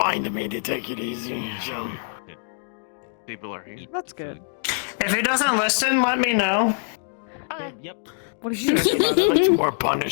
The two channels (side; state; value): right; silent; digital silence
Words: me to take it easy. So People are here. That's good. If he doesn't listen, let me know. Yep. What did you it's like more